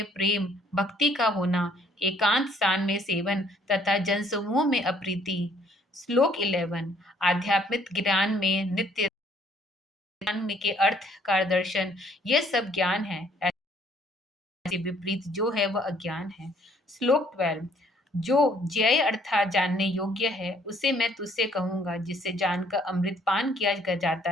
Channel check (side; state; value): both; normal; correlation 0.63